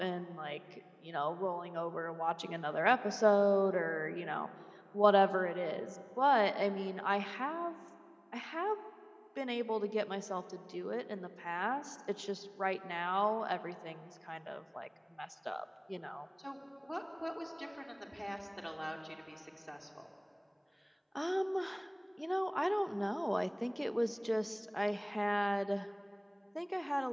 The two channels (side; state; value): both; identical; correlation 1.00